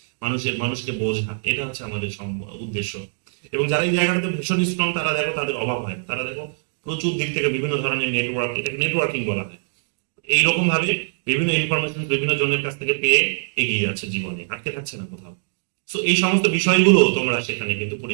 মানুষকে বোঝা, এটা হচ্ছে আমাদের উদ্দেশ্য। এবং যারা এই জায়গাটাতে ভীষণ স্ট্রং তারা দেখো তাদের অভাব হয়, তারা দেখো প্রচুর দিক থেকে বিভিন্ন ধরনের নেটওয়ার্ক, এটাকে নেটওয়ার্কিং বলা হয়, এইরকম ভাবে বিভিন্ন ইনফরমেশন বিভিন্ন জনের কাছ থেকে পেয়ে এগিয়ে যাচ্ছে জীবনে, আটকে থাকছে না কোথাও। সো এই সমস্ত বিষয়গুলো তোমরা সেখানে কিন্তু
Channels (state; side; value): silent; left; digital silence